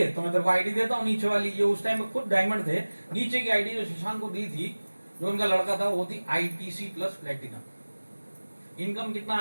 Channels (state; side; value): inverted; both; correlation -1.00